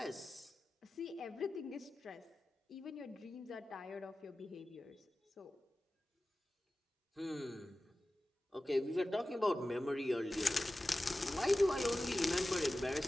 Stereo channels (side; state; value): both; normal; correlation 0.95